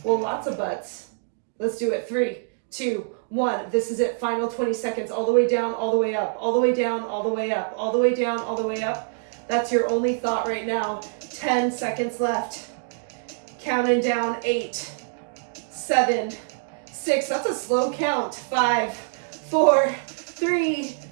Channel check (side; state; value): left; silent; digital silence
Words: Well, lots of buts. Let's do it. 3, 2, 1. This is it. Final 20 seconds. All the way down, all the way up, all the way down, all the way up, all the way down, all the way up. That's your only thought right now. 10 seconds left. Counting down. 8, 7, 6. That's a slow count. 5, 4, 3,